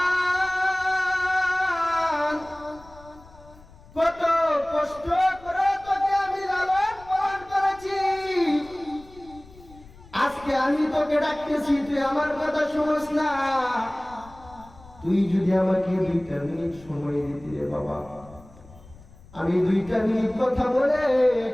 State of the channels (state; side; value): noise; left; rumble, 22 dB below the sound